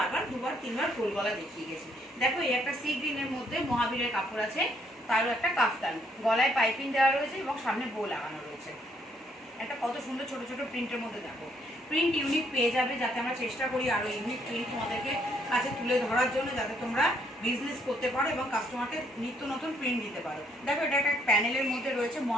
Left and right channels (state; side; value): normal; both; correlation 0.70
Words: দুবার তিনবার গোলগলা দেখিয়ে গেছি। দেখো এই একটা সি গ্রিনের মধ্যে মহাবীরের কাপড় আছে, তারও একটা কাফতান, গলায় পাইপিং দেওয়া রয়েছে এবং সামনে বো লাগানো রয়েছে। একটা কত সুন্দর ছোট ছোট প্রিন্টের মধ্যে দেখো, প্রিন্ট ইউনিক পেয়ে যাবে, যাতে আমরা চেষ্টা করি আরো ইউনিক প্রিন্ট তোমাদেরকে কাছে তুলে ধরার জন্য, যাতে তোমরা বিজনেস করতে পারো এবং কাস্টমারকে নিত্য নতুন প্রিন্ট দিতে পারো। দেখো এটা একটা প্যানেলের মধ্যে রয়েছে,